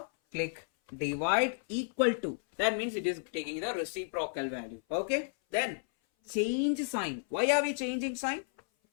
click divide equal to. That means it is taking the reciprocal value. Okay. Then change sign. Why are we changing sign?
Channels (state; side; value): silent; right; 56 dB below the other